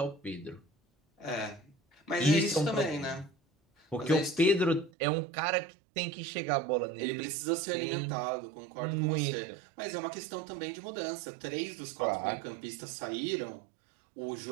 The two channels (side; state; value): left; drops out; at 4.9 s